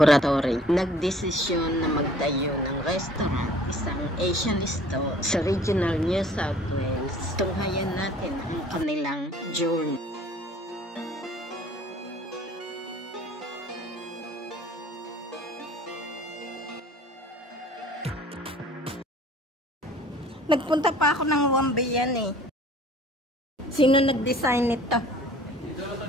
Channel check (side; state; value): both; normal; correlation 0.51